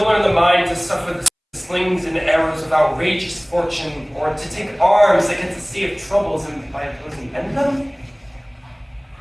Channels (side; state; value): both; identical; correlation 1.00